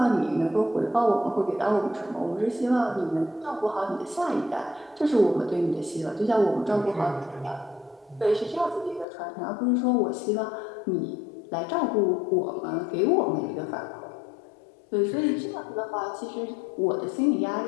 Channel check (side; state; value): right; drops out; at 9.1 s